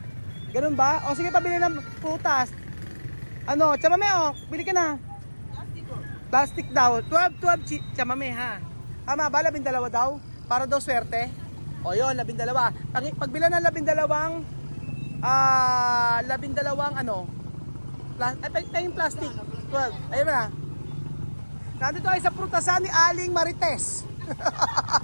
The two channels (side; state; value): both; inverted; correlation -1.00